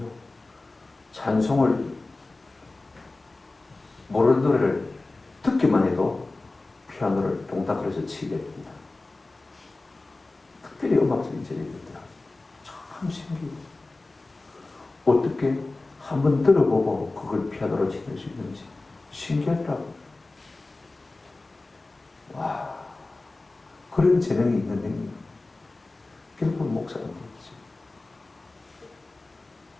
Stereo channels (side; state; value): right; quieter; 3.2 dB